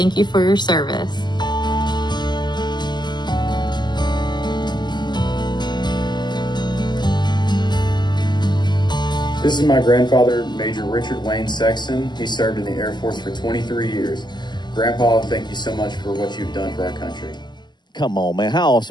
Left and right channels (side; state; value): right; late; 0.21 ms